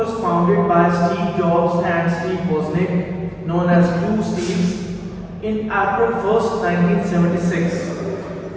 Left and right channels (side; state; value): both; identical; correlation 1.00